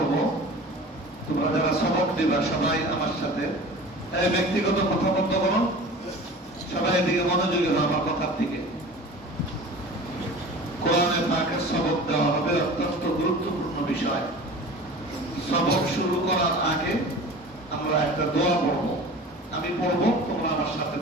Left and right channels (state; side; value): normal; both; correlation 0.39